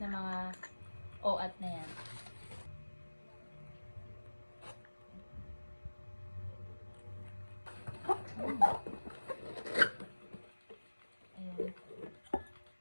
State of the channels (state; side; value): inverted; both; correlation -1.00